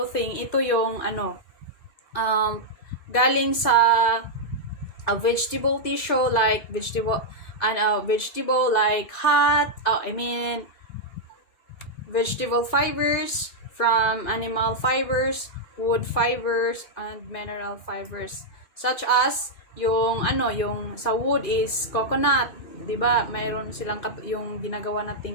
ito yung galing sa a vegetable tissue like vegetable like vegetable fibers from animal fibers, wood fibers, and mineral fibers, such as yung sa wood is coconut, 'di ba? Mayroon silang yung ginagawa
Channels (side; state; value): right; late; 2.0 ms